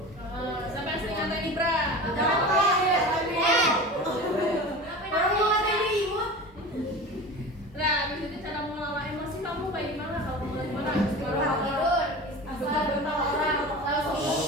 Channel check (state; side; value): normal; both; correlation 0.33